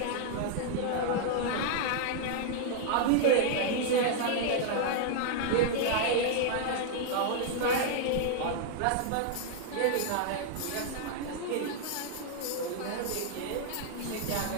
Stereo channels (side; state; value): both; different; correlation -0.01